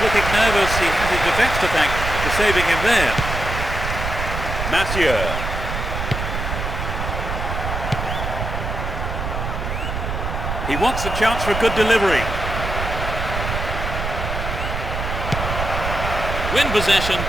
looking nervous. He has his defence to thank for saving him there. Mathieu. He wants the chance for a good delivery. Win possession,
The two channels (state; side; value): noise; right; rumble, 4 dB below the sound